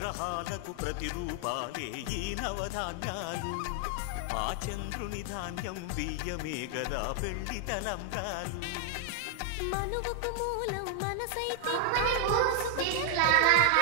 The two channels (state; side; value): different; both; correlation 0.00